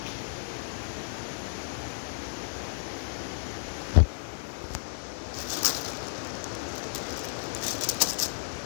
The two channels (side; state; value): right; silent; digital silence